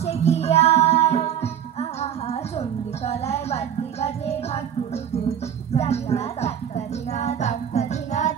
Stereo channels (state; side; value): quieter; left; 9.1 dB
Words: কি আর আহা চণ্ডীতলায় বাদ্যি বাজে ঢাক কুড়ুকুর, জানিনা তাক্কা ধিনা তাক্কা ধিনা